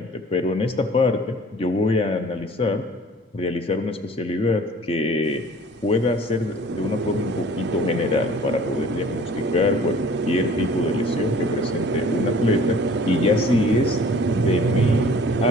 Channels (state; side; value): normal; both; correlation 0.50